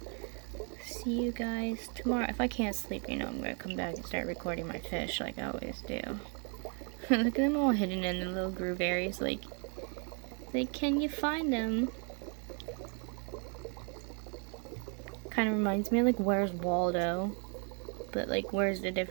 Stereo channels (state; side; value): quieter; left; 38.8 dB